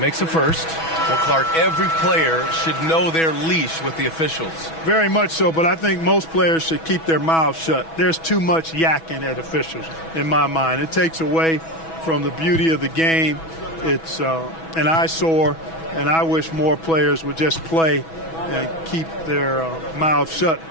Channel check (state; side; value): late; right; 6.1 ms